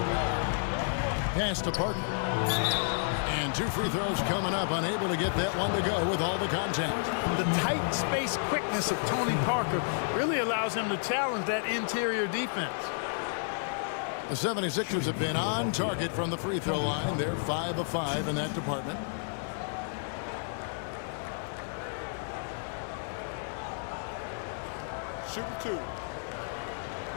Pass to Parker. And 2 free throws coming up. Unable to get that one to go with all the contact. The tight space quickness of Tony Parker really allows him to challenge that interior defense. The 76ers have been on target from the free throw line. They're 5 of 5 in that department. Shooting 2.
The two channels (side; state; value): right; silent; digital silence